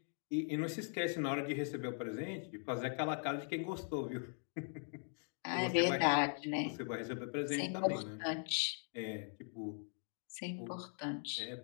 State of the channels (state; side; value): silent; right; 51 dB below the other